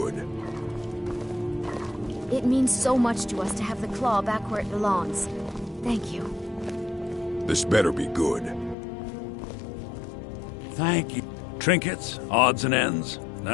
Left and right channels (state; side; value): drops out; right; at 8.8 s